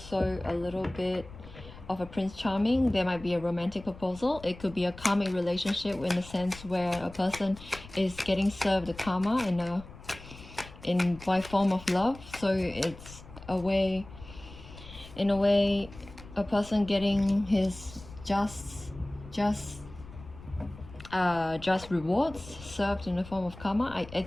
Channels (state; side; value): noise; left; rumble, 17 dB below the sound